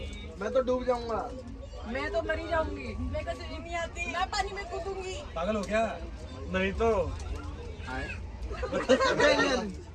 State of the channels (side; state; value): both; identical; correlation 1.00